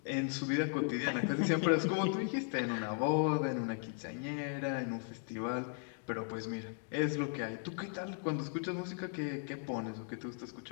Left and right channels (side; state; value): right; silent; 53 dB below the other